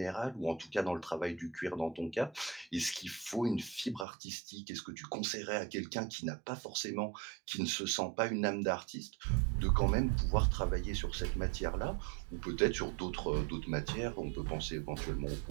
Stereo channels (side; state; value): left; drops out; at 4.0 s